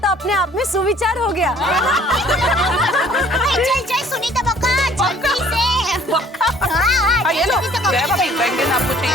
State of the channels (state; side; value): normal; both; correlation 0.55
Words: अपने आप में सुविचार हो गया। चल चल सुनीता बक्का, जल्दी से। हाँ, ये लो, जय भाभी, बैंगन आपको चाहिए।